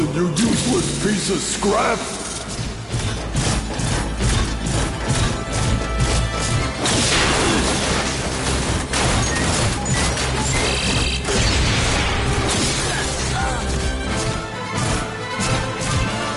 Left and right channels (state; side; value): identical; both; correlation 1.00